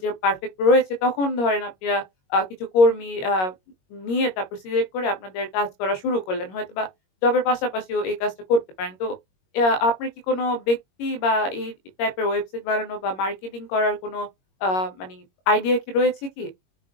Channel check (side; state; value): right; late; 21 ms